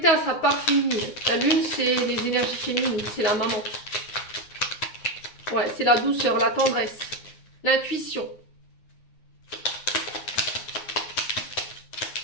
à sa part féminine. La lune, c'est les énergies féminines, c'est la maman. Ouais, c'est la douceur, la tendresse, l'intuition.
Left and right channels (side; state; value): right; late; 9.6 ms